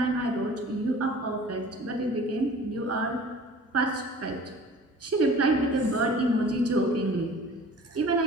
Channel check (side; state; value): both; normal; correlation 0.45